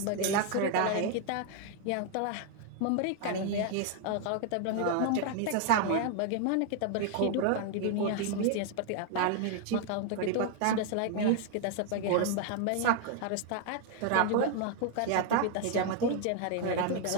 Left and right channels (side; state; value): both; different; correlation 0.00